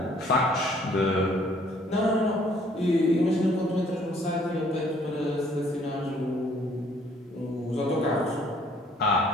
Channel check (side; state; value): both; normal; correlation 0.61